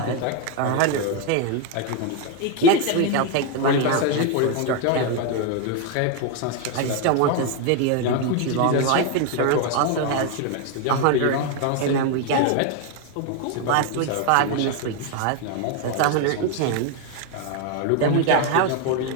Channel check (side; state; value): both; different; correlation 0.01